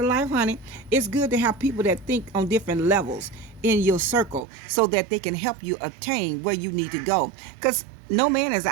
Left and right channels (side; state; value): left; drops out; at 4.5 s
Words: life, honey. It's good to have people that think on different levels in your circle so that they can help you obtain where you need to go. Because no man is